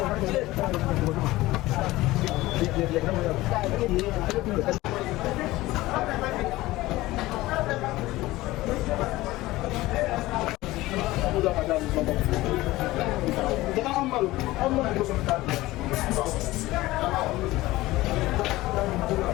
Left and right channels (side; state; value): right; quieter; 18.2 dB